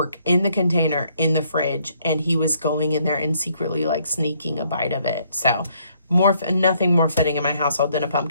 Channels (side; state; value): both; inverted; correlation -0.68